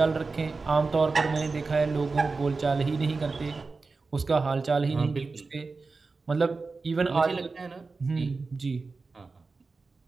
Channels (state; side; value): quieter; left; 4.1 dB